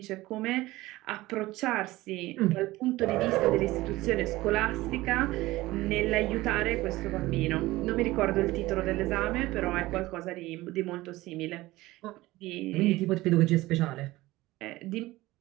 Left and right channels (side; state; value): left; quieter; 18.4 dB